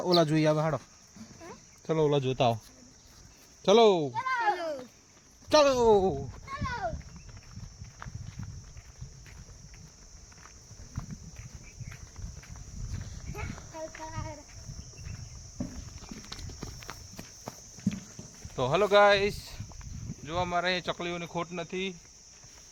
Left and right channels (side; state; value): both; identical; correlation 1.00